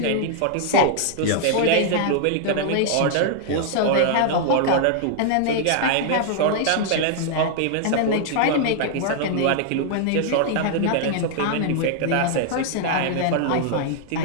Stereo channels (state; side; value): different; both; correlation 0.00